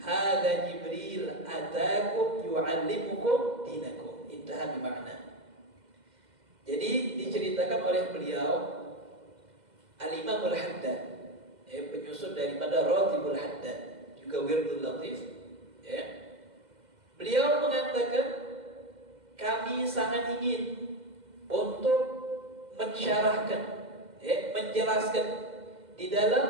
Jibril ataakum yu'allimukum dinakum, intaha bi makna. Jadi diceritakan oleh beliau Al-Imam Al-Haddad, penyusun daripada Ratibul Haddad, juga Wirdul Latif, Beliau mengatakan, kami sangat ingin untuk mensyarahkan, menjelaskan di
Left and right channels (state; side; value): late; left; 2.1 ms